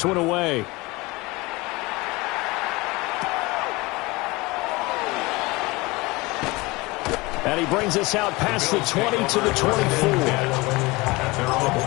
one away. And he brings us out past the 20 to the 24.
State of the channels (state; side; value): quieter; right; 23.1 dB